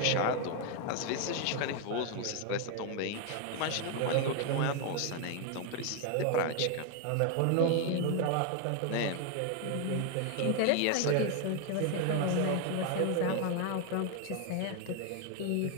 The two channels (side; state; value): both; different; correlation 0.01